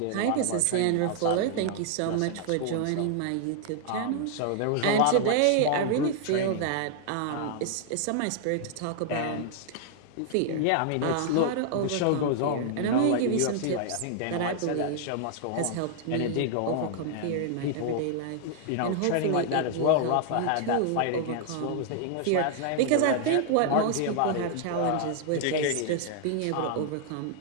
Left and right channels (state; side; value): different; both; correlation -0.01